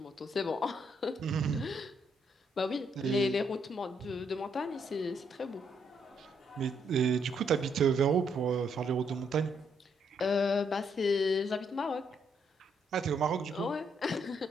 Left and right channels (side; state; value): both; normal; correlation 0.74